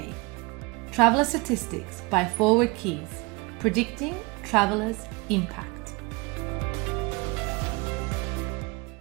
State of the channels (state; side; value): quieter; left; 26.8 dB